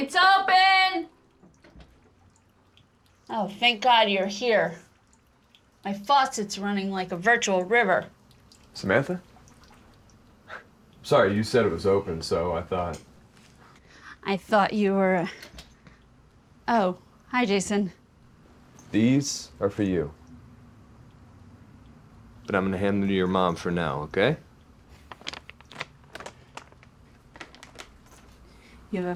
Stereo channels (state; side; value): identical; both; correlation 1.00